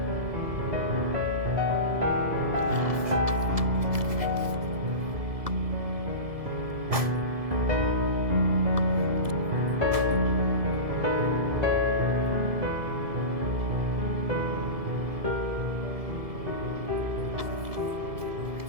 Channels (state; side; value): late; left; 2.6 ms